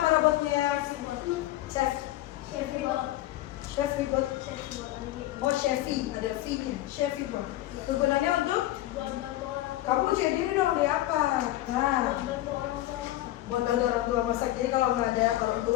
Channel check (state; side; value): quieter; right; 15.4 dB